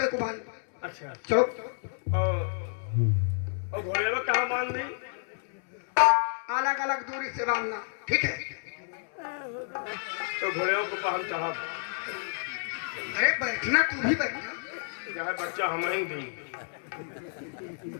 को बांध। अच्छा चलो। और घोड़े में कहाँ बांध दी? अलग अलग दूरी से बांधना, ठीक है? तो घोड़े को पहन साहब। अरे बैठना, तू भी बैठना। जहाँ बच्चा हम ही दी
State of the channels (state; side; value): silent; right; 58 dB below the other